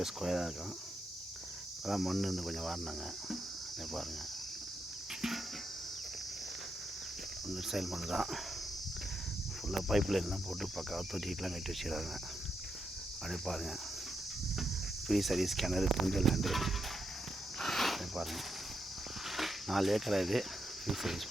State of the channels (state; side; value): normal; both; correlation 0.83